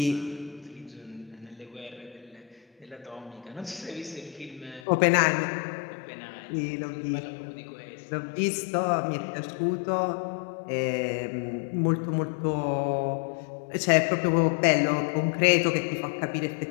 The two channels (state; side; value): drops out; right; at 4.8 s